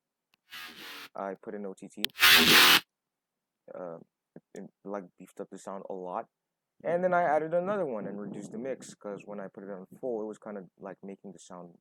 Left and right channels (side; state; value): both; identical; correlation 1.00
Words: I put in OTT. It beefed up the sound a lot. And then I added another one and reduced the mix, because when I put it on full, it was kind of like making the sound